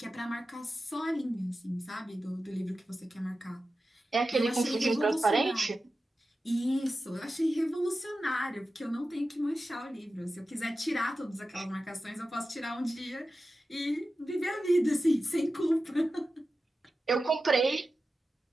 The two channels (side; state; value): both; normal; correlation 0.93